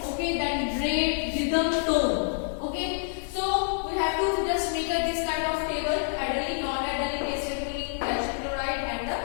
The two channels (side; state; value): right; silent; 60 dB below the other